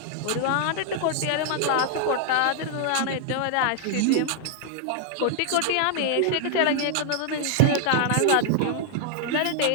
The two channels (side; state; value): both; different; correlation 0.00